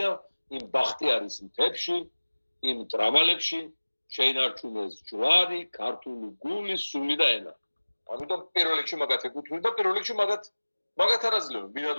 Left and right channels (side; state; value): both; inverted; correlation -1.00